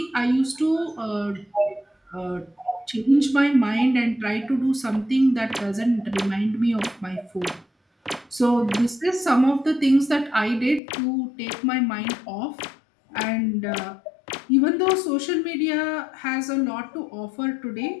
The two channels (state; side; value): drops out; right; at 10.8 s